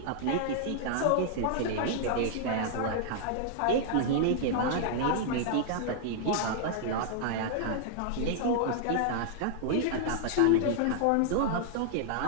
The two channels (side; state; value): both; different; correlation -0.01